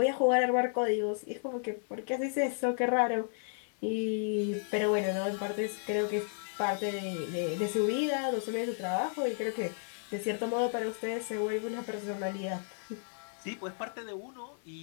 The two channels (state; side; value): silent; right; 56 dB below the other